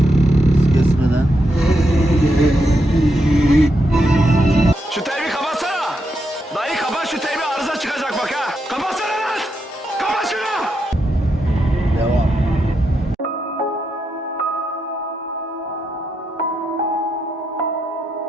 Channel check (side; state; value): both; normal; correlation 0.83